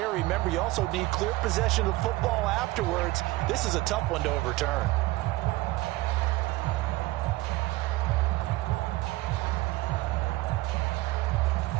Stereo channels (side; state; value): left; quieter; 19.0 dB